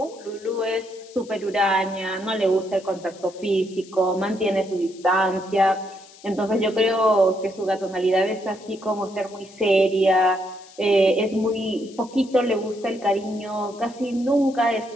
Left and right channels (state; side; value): noise; left; hiss, 23 dB below the sound